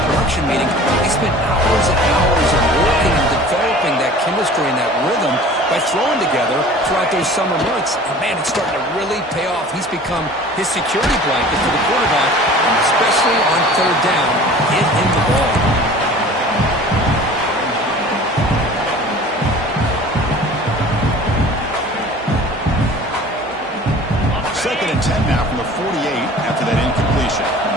production meeting, they spent hours and hours of working and developing that chemistry and that rhythm by throwing together throughout those summer months. And, man, it's starting to really pay off. He's become his security blanket for the quarterback, and especially on third down, get him the ball. Second and 10 now from the 48 after that incompletion.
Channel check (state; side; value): normal; both; correlation 0.44